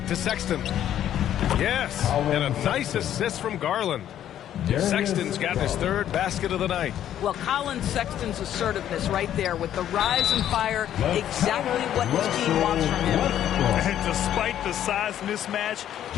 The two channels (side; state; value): right; quieter; 11.0 dB